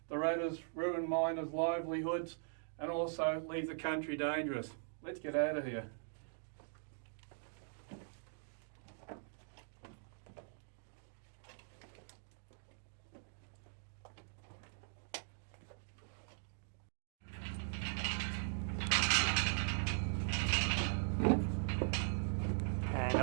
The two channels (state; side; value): silent; left; digital silence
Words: the ratters ruin miners' livelihoods and also leave the country dangerous. Let's get out of here. And